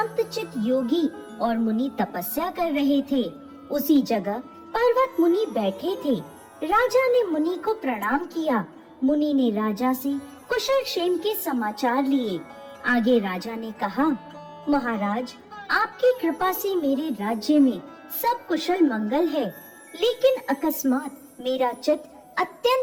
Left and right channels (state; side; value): identical; both; correlation 1.00